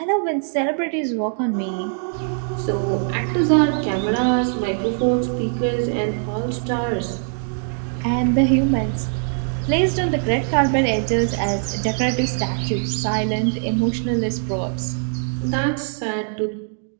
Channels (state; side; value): silent; left; 64 dB below the other